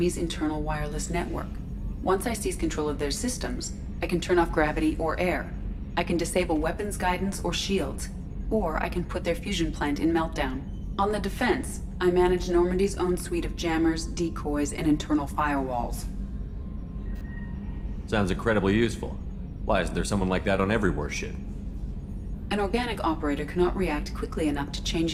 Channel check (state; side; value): identical; both; correlation 1.00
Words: internal wireless network. Once I seize control of their systems, I can turn off gravity or air. I can disable weapons guidance or shields, or I can put their fusion plant in meltdown. On the defense, I manage Normandy's own suite of jammers, decoys, and internal firewalls. Sounds incredibly useful. Why isn't there someone like that on every warship? An organic operator cannot react quickly enough to